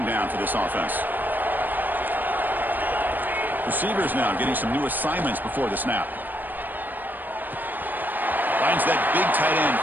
down for this offense? Receivers now getting some new assignments before the snap. Finds that big tight end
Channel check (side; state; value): left; late; 0.089 ms